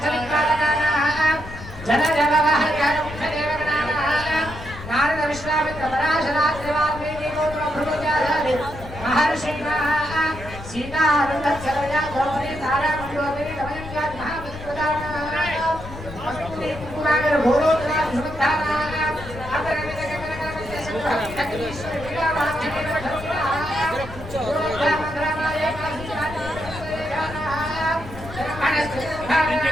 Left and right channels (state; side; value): noise; left; rumble, 13 dB below the sound